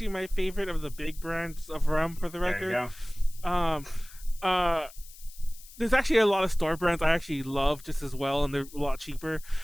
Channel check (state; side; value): noise; left; hiss, 20 dB below the sound